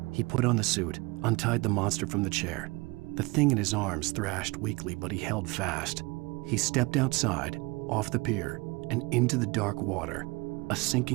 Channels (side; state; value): left; quieter; 25.0 dB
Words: He put on the suit, untied the monster from the chair. The thing in his arms thrashed weakly, but he held fast. He stepped outside, off the pier, and into the dark water, a